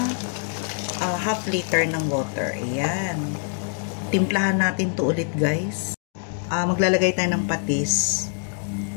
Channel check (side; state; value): right; silent; 62 dB below the other